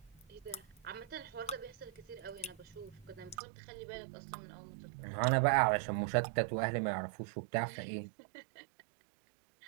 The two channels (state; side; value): drops out; left; at 3.4 s